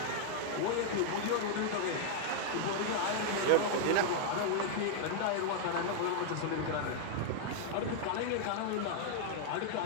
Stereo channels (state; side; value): different; both; correlation -0.01